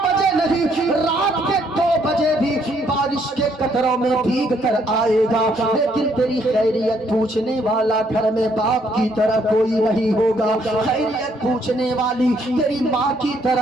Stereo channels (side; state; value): both; normal; correlation 0.69